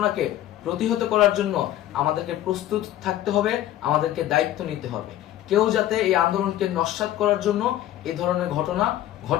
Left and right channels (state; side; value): quieter; right; 13.0 dB